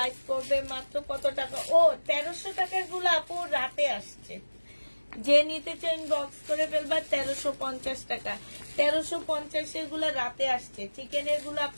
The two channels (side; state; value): both; inverted; correlation -1.00